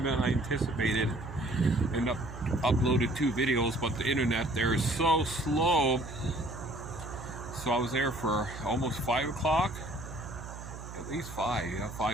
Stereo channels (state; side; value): noise; right; hum, 11 dB below the sound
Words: than I anticipated. Ended up uploaded 2 videos, but the internet there is so slow. So I was there for almost 5 o'clock. At least